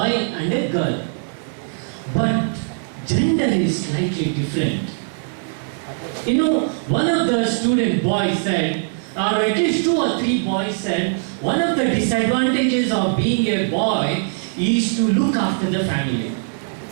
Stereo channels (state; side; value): silent; left; 57 dB below the other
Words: and a girl. But gender is slightly different. You know, one of the student boys said, or at least 2 or 3 boys said, one of the disadvantages of being a boy is to look after the family,